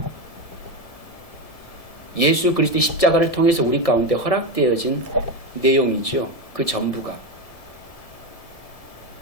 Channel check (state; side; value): late; right; 1.6 ms